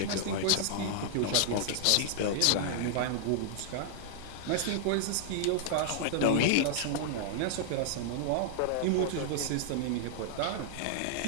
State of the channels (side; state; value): both; different; correlation -0.01